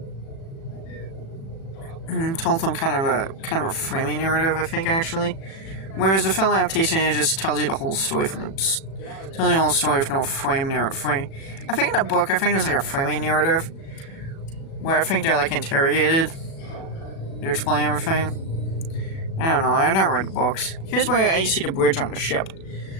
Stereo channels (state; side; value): late; right; 36 ms